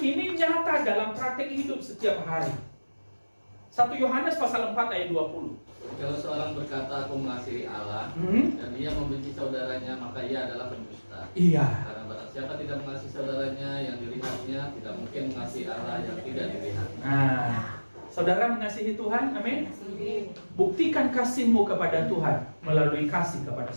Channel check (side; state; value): both; inverted; correlation -1.00